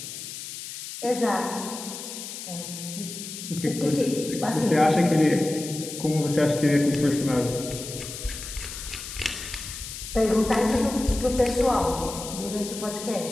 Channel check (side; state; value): left; noise; hiss, 9 dB below the sound